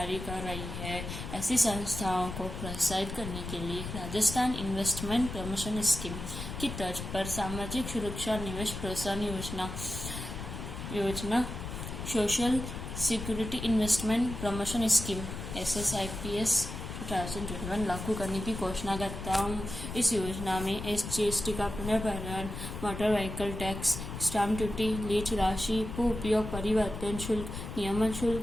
कर रही है। ऐसी संस्थाओं को प्रोत्साहित करने के लिए राजस्थान इन्वेस्टमेंट प्रमोशन स्कीम की तर्ज पर सामाजिक सुरक्षा निवेश प्रोत्साहन योजना social security investment promotion scheme SSIPS 2021 लागू करने की घोषणा करता हूँ। इस योजना में SGST का पुनर्भरण, motor vehicle tax, stamp duty, lease राशि, भू उपयोग परिवर्तन शुल्क, नियमन शुल्क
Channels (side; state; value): left; noise; rumble, 7 dB below the sound